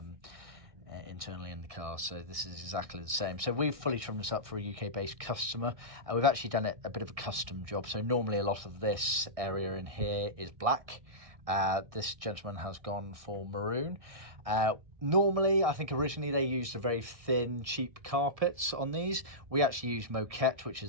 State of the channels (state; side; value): late; left; 1.6 ms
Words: internally in the car, so this is exactly the same. So we've fully trimmed this up for a UK-based customer. We've actually done a bit of a custom job. So normally a lot of this area in here is black. This gentleman has gone for maroon. Normally, I think originally they used a very thin, cheap carpets on these. We actually use Moquette, which